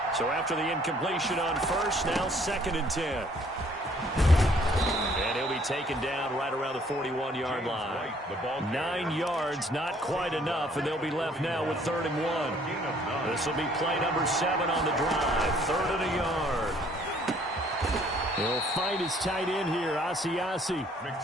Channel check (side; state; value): both; normal; correlation 0.61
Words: So after the incompletion on 1st, now 2nd and 10. And he'll be taken down right around the 41-yard line. 9 yards, not quite enough, and they'll be left now with 3rd and 1. This will be play number 7 on the drive. 3rd and a yard. He'll find his tight end here, Asiasi.